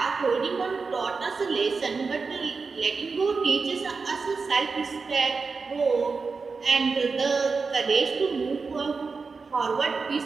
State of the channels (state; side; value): quieter; left; 4.6 dB